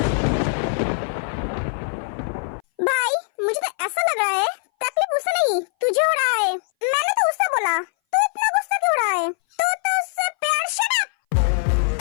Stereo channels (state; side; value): silent; right; 60 dB below the other